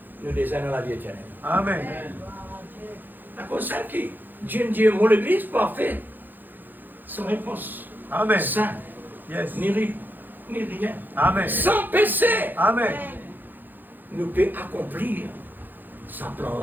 Nous désirons la vie éternelle. Amen. La cause c'est qui Dieu dit, mon église parfait, sans réponse. Amen. Saint, Yes. ni rien. Amen. Sans péché, Amen. nous peut accomplir sa plan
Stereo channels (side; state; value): left; late; 0.089 ms